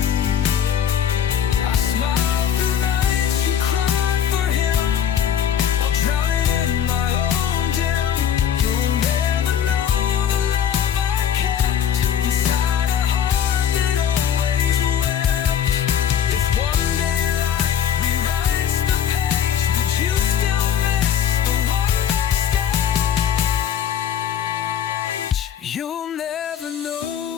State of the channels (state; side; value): quieter; right; 8.9 dB